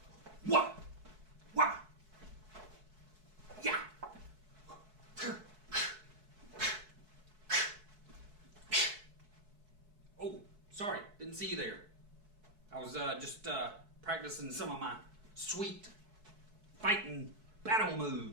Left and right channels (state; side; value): late; left; 4.6 ms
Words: Wah. Wah. Yeah. Oh, sorry, didn't see you there. I was just practicing some of my sweet fighting battle